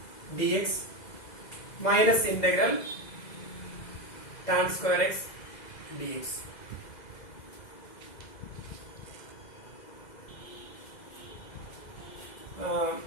dx minus integral tan square x dx.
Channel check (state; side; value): late; right; 2.0 ms